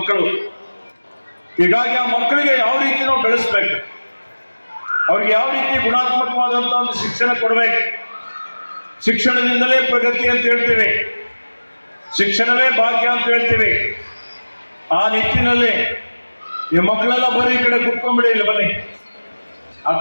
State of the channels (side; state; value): both; inverted; correlation -1.00